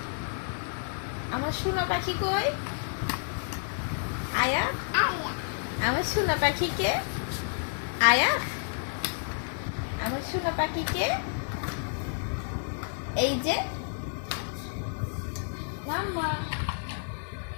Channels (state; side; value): silent; right; digital silence